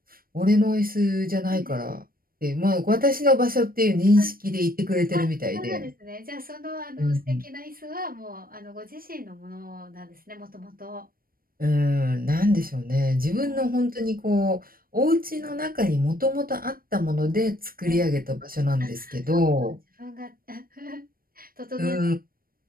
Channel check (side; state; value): left; late; 0.42 ms